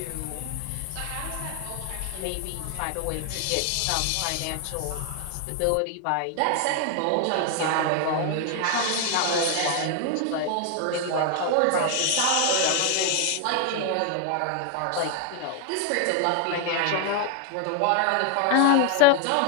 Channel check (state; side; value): different; both; correlation 0.00